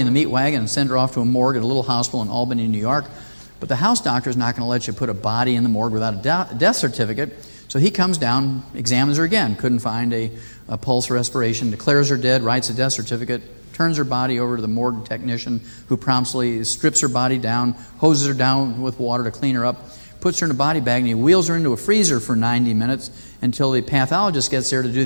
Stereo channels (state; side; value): inverted; both; correlation -1.00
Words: the meat wagon and sent her off to a morgue at a little hospital in Albany, New York. But the house doctor is not going to let you put a body in the morgue without a death certificate. So So he comes down, examines her again, couldn't find a pulse or respiration, declares her dead, writes a death certificate, turns her body over to the morgue technician, who promptly strips her body down, hoses her down with water to clean her up, puts her in a body bag, and he wheels her into a freezer for 90 minutes until the pathologist gets there to do